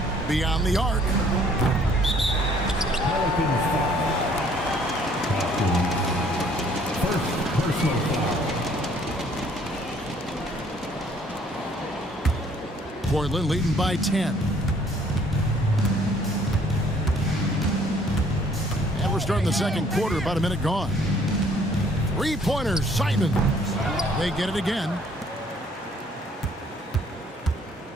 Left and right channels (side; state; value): both; normal; correlation 0.61